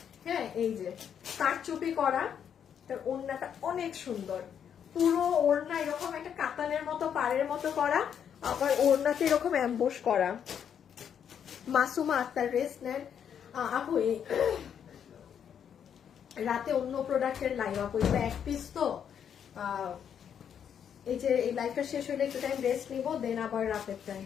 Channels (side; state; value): right; quieter; 8.3 dB